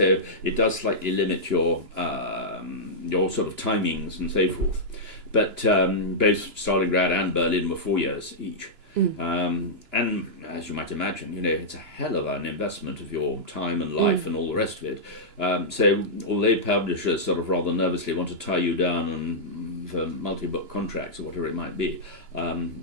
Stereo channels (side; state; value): left; late; 2.9 ms